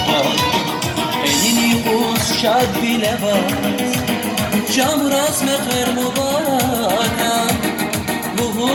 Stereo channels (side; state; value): both; identical; correlation 1.00